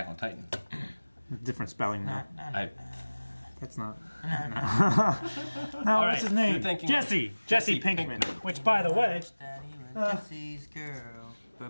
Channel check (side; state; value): both; inverted; correlation -1.00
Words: on Titan. Different spelling now. That's not... No, All what's his name? Jesse Pinkman. Which, by the way... Jesse's girl.